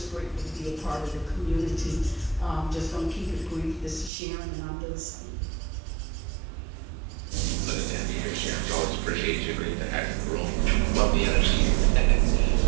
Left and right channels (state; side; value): drops out; left; at 4.1 s